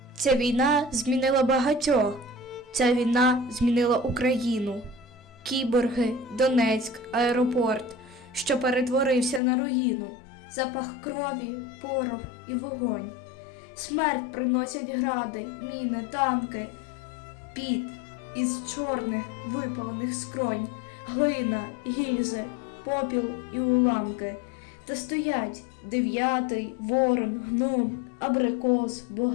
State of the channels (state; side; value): drops out; right; at 9.4 s